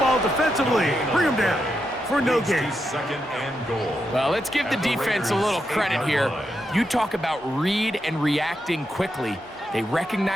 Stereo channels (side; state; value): both; normal; correlation 0.84